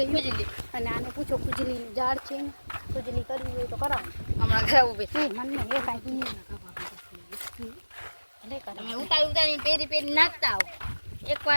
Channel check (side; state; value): both; inverted; correlation -1.00